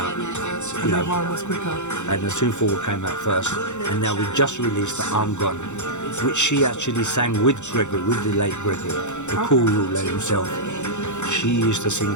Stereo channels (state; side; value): late; right; 0.84 ms